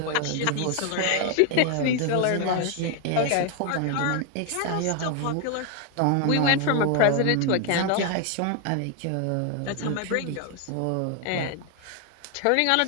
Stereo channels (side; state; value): both; different; correlation 0.00